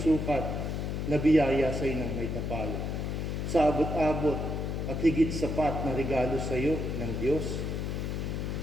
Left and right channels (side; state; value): left; noise; hum, 2 dB below the sound